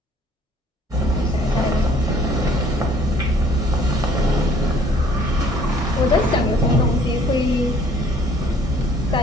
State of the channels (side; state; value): both; normal; correlation 0.58